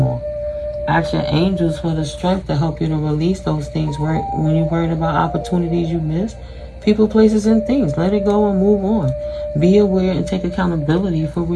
Ask your angels for the strength to help you to release those things when you're worried about opportunities you missed, people, places, and things. Let it go and move on. Be aware and take accountability for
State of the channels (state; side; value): identical; both; correlation 1.00